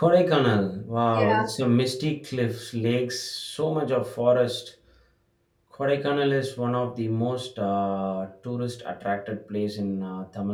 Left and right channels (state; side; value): identical; both; correlation 1.00